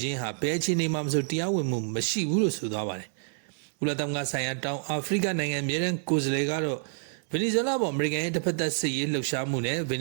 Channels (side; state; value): left; silent; digital silence